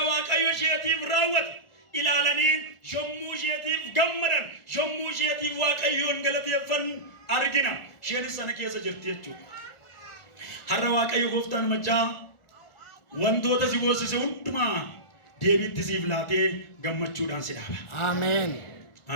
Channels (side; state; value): right; late; 1.4 ms